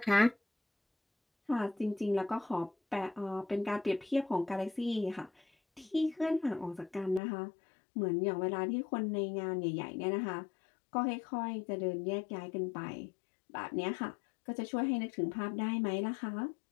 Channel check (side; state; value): right; drops out; at 7.2 s